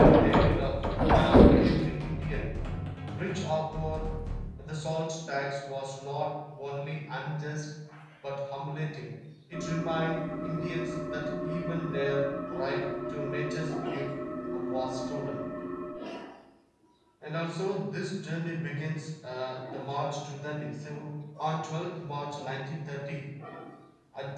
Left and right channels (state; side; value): identical; both; correlation 1.00